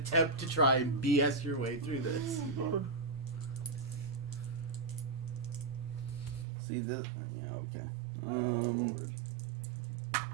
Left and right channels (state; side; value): drops out; left; at 6.5 s